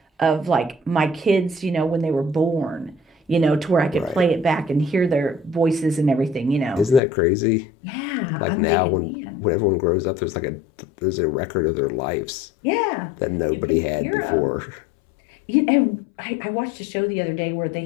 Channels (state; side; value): drops out; right; at 7.0 s